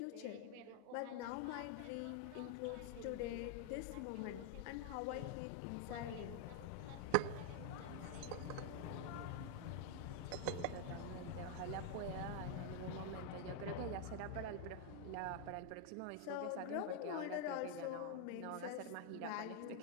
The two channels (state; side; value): different; both; correlation 0.00